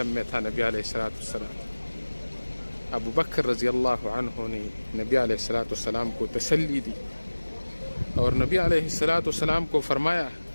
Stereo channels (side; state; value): both; inverted; correlation -1.00